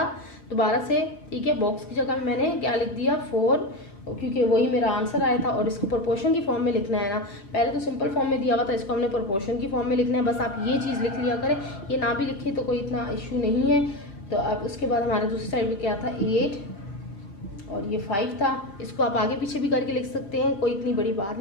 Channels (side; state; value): right; late; 5.3 ms